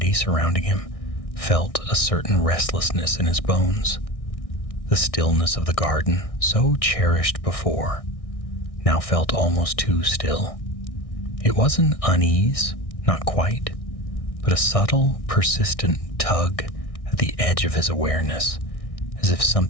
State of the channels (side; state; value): right; late; 1.6 ms